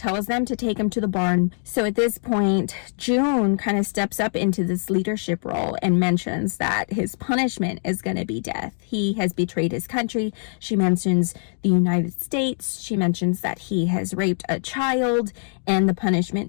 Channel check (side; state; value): right; silent; digital silence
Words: them to take him to the barn. So at this point, June kind of steps up into this leadership role and mentions that his punishment is going to be death. He has betrayed his country. She mentions the United States. She mentions that he has raped a child, and the